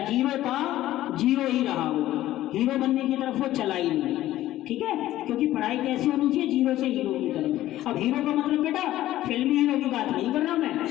जीरो था जीरो ही रहा वो, हीरो बनने की तरफ वो चला ही नहीं। ठीक है, क्योंकि पढ़ाई कैसी होनी चाहिए, जीरो से हीरो की तरफ। अब हीरो का मतलब बेटा फिल्मी हीरो की बात नहीं कर रहा मैं,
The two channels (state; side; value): quieter; right; 14.5 dB